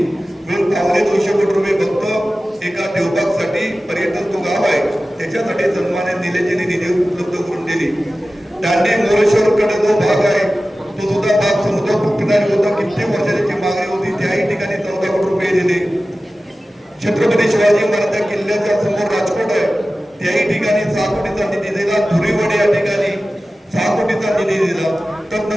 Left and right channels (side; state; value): both; normal; correlation 0.95